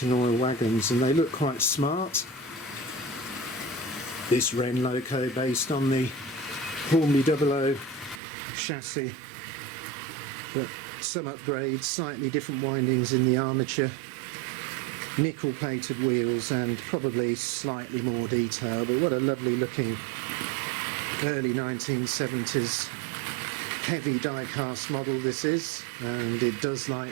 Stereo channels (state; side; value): drops out; left; at 8.2 s